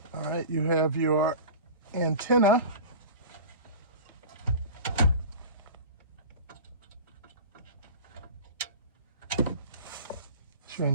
All right, you have your antenna. It's your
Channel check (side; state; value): both; inverted; correlation -0.34